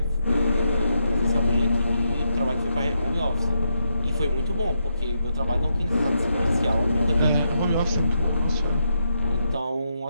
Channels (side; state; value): both; inverted; correlation -0.81